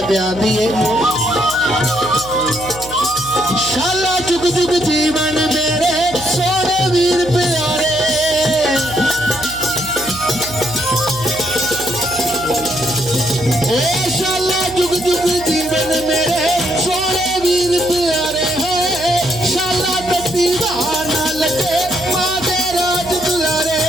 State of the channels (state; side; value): noise; right; hum, 16 dB below the sound